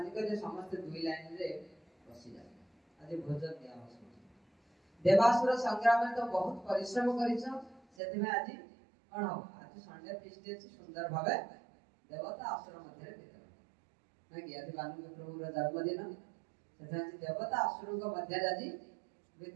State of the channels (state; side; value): drops out; left; at 7.8 s